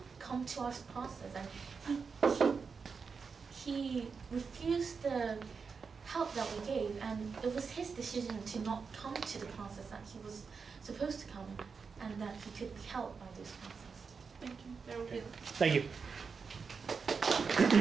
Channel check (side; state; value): left; quieter; 5.4 dB